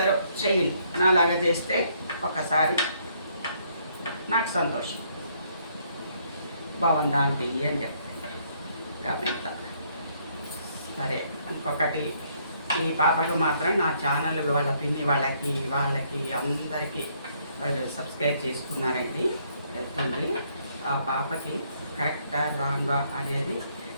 చెయ్యండి. నాలాగా చేస్తే ఒకసారి నాకు సంతోషం. బాగుందా ఆంటీ అని చెప్తాను కామెంట్. సరే, ఇంకొకటి, ఈ పాపకు మాత్రం నా ఛానల్ వాళ్ళ పిన్ని వాళ్ళకి అందరికీ వాళ్ళు సబ్స్క్రైబ్ చేసుకున్నారండి. వెళ్తుంది. ఆ పాపకి కరెక్టా రాంగా అనేది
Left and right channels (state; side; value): inverted; both; correlation -0.69